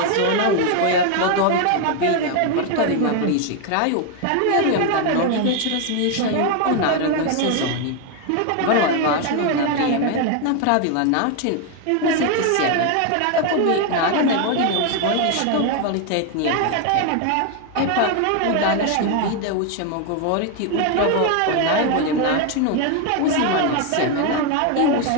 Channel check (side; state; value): both; different; correlation 0.01